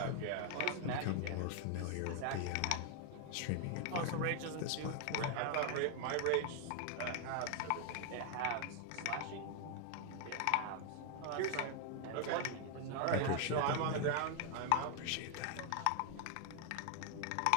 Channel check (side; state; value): both; different; correlation 0.01